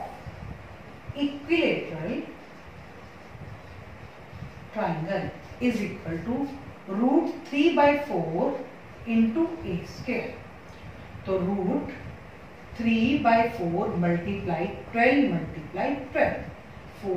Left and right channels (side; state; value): both; identical; correlation 1.00